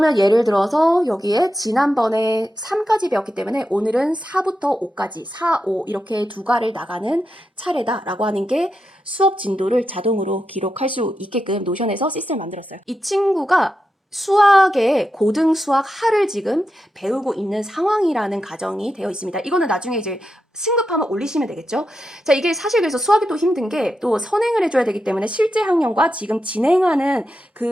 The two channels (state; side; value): normal; both; correlation 0.88